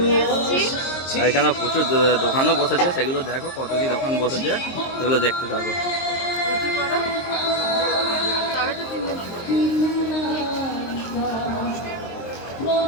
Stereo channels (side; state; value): right; late; 23 ms